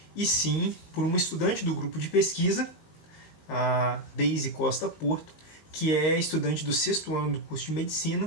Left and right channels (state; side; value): late; right; 19 ms